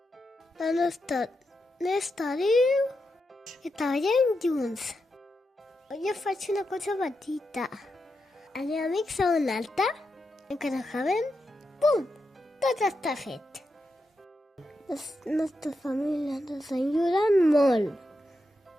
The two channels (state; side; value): normal; both; correlation 0.86